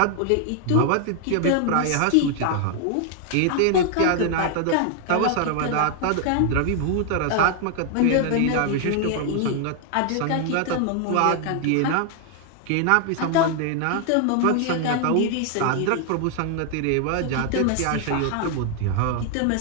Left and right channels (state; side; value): different; both; correlation 0.00